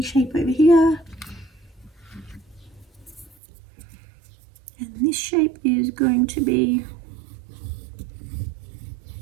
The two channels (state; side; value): drops out; left; at 3.4 s